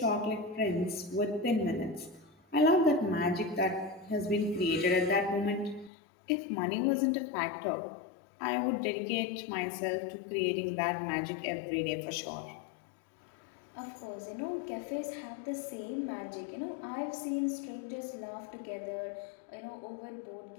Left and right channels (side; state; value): right; drops out; at 5.9 s